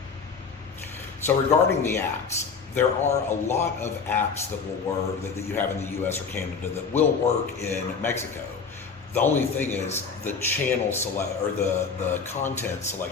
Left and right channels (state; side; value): quieter; right; 5.5 dB